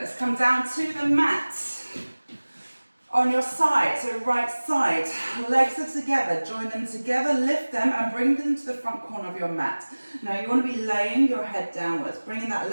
come down to the mat. On your side, so right side, legs are together, join them together, lift them and bring them to the front corner of your mat. Now you want to be laying your head downwards, bringing that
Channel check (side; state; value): both; inverted; correlation -1.00